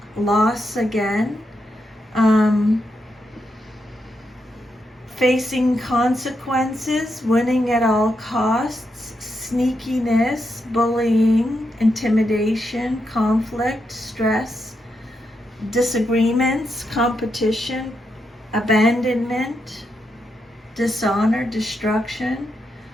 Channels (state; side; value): normal; both; correlation 0.83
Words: loss again. Facing consequences, winning at all costs, sneakiness, bullying, intimidation, conflict, stress, disagreements, competition, abandonment, dishonor, destruction.